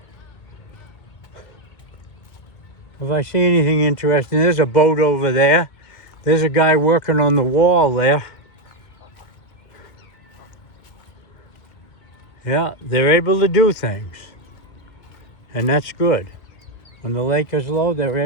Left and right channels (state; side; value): late; right; 2.2 ms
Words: If I see anything interesting, there's a boat over there. There's a guy working on the wall there. Yeah, they're able to do things. And that's good. When the lake is low, they're